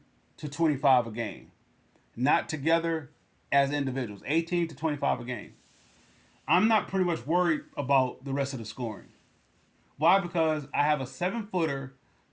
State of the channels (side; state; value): both; identical; correlation 1.00